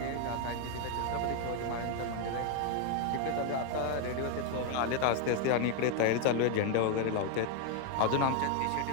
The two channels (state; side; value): different; both; correlation 0.01